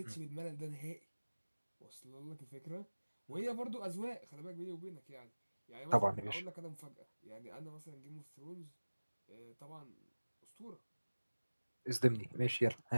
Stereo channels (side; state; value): both; inverted; correlation -1.00